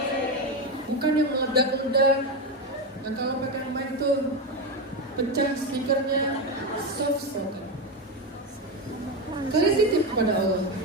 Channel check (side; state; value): both; normal; correlation 0.13